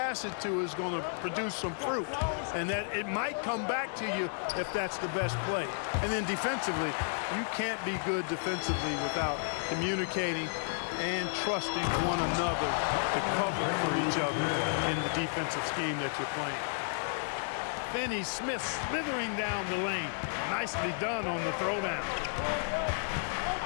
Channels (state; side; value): silent; right; digital silence